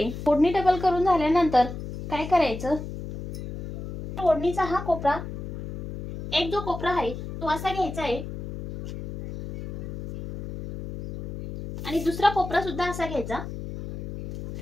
ओढणी डबल करून झाल्यानंतर काय करायचं, ओढणीचा हा कोपरा, एक जो कोपरा आहे तो असा घ्यायचा आहे आणि दुसरा कोपरा सुद्धा असा घ्यायचा,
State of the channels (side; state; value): left; noise; hum, 8 dB below the sound